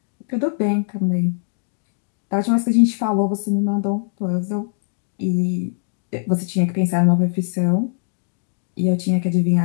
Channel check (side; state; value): right; silent; digital silence